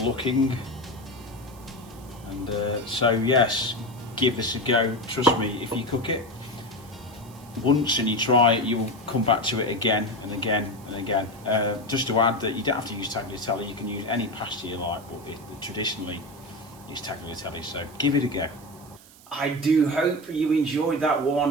And so yes, give this a go. Trust me, if you cook it once and you try it, you will come back to it again and again and again. Just to add that you don't have to use tagliatelle, you can use any pasta you like, but traditionally it's tagliatelle, so give it a go. I do hope you enjoyed that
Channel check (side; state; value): right; noise; hiss, 23 dB below the sound